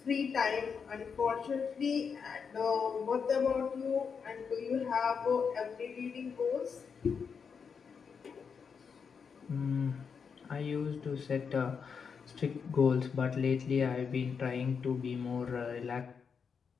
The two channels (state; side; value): quieter; right; 6.1 dB